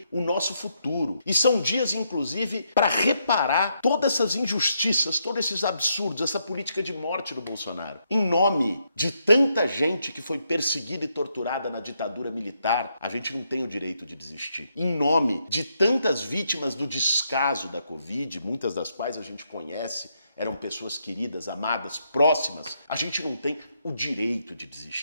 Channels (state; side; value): inverted; both; correlation -0.78